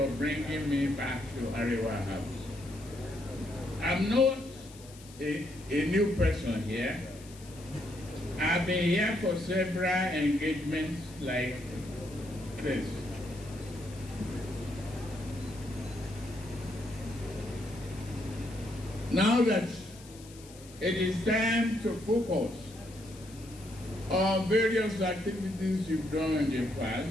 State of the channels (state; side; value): noise; left; hiss, 20 dB below the sound